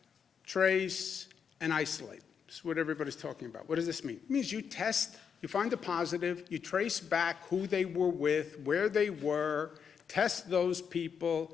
trace, and isolate. That's what everybody's talking about. What does this mean? It means you test, you find a positive, you trace back who they were with, where they were, test those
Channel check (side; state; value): right; quieter; 6.9 dB